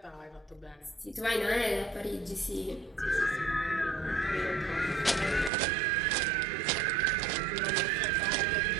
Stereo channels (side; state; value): left; drops out; at 5.5 s